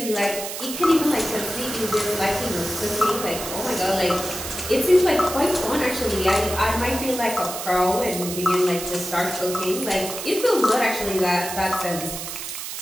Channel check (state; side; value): noise; right; hiss, 7 dB below the sound